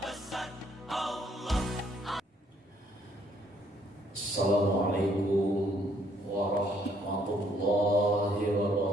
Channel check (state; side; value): normal; both; correlation 0.67